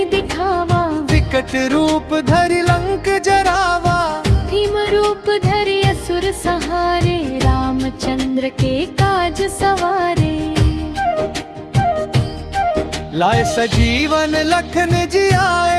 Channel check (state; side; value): identical; both; correlation 1.00